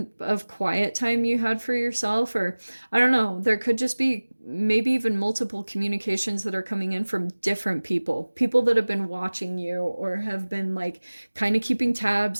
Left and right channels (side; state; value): both; inverted; correlation -1.00